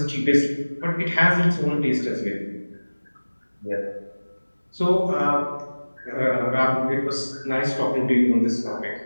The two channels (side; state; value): both; inverted; correlation -1.00